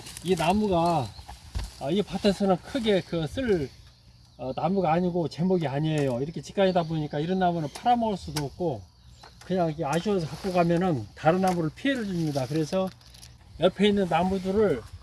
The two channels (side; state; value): both; identical; correlation 1.00